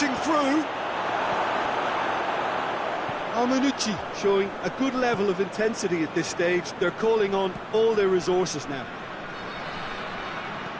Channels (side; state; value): both; identical; correlation 1.00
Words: through. Manucci showing a good level of intensity at this stage. They're calling on all their resources now.